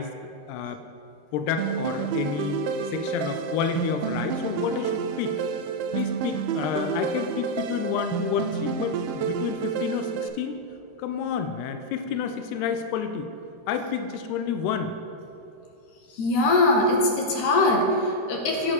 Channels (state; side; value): late; right; 13 ms